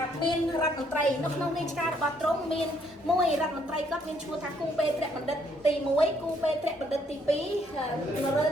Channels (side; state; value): both; normal; correlation 0.68